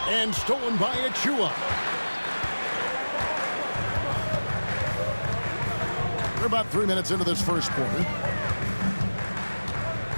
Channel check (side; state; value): both; inverted; correlation -1.00